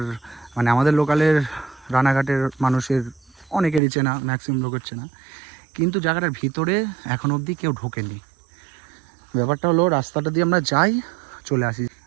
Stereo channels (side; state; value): left; drops out; at 3.8 s